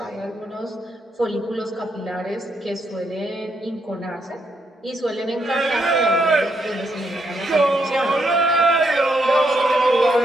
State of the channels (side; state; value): both; normal; correlation 0.77